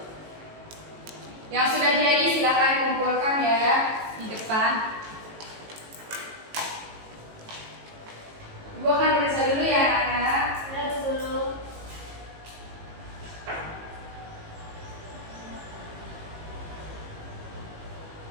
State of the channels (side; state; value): left; late; 18 ms